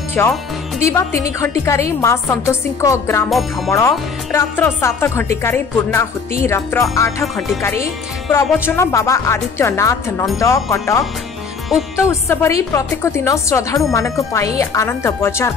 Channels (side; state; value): right; quieter; 5.3 dB